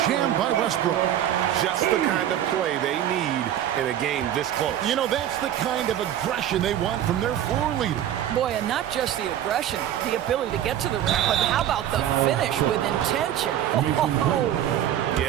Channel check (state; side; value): quieter; left; 11.2 dB